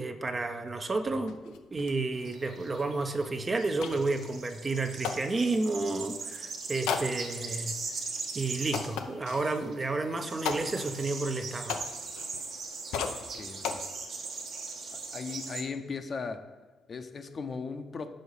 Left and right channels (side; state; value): both; normal; correlation 0.81